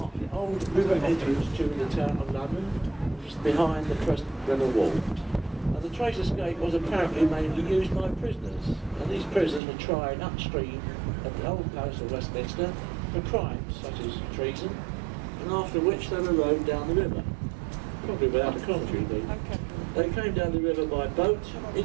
the old river entrance to the town of London, which is behind the present river wall. And the Traitors' Gate was apparently mainly used by prisoners, and these prisoners were tried upstream at the old palace of Westminster for crimes such as treason, and after which they were rowed down the river, probably without a commentary indeed. They came down the river by boat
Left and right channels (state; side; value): drops out; left; at 9.6 s